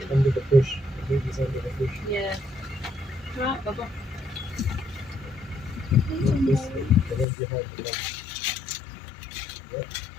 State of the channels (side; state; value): right; drops out; at 7.2 s